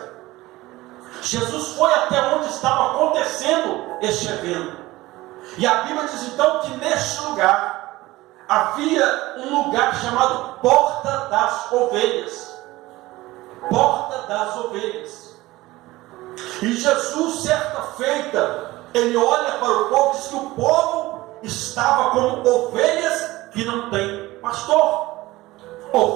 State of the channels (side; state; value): left; quieter; 18.7 dB